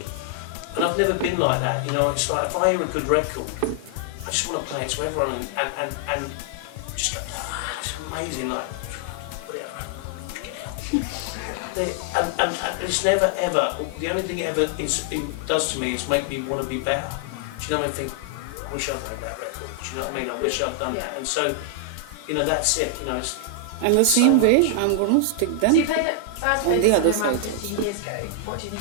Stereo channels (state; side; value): different; both; correlation 0.00